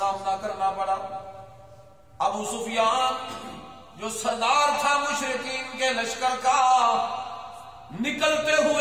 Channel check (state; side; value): identical; both; correlation 1.00